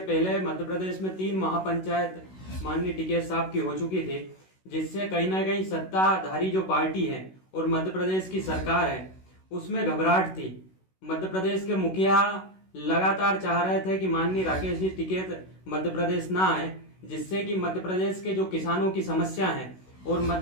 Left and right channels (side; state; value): right; late; 16 ms